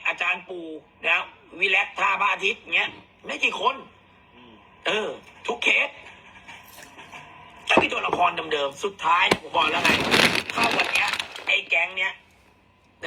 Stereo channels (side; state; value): both; identical; correlation 1.00